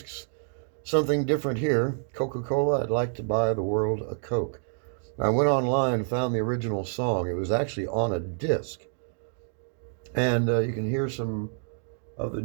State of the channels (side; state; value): left; silent; 60 dB below the other